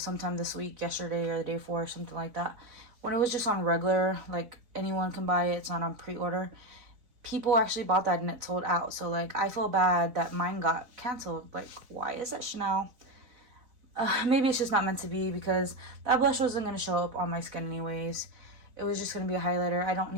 sometime this week, yesterday, or the day before, or something like that. When it was just on regular, like anyone can buy it, it's not on pre-order, people actually bought that and it sold out. So like, I feel bad that mine got canceled. Like, why is that, Chanel? Maybe it's just not meant to be, because that blush wasn't going to show up on my skin anyways. It was just going to be a highlighter. I don't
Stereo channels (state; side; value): late; left; 4.0 ms